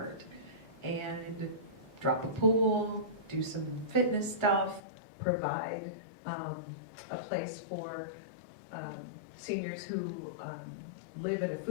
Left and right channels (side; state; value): right; drops out; at 4.8 s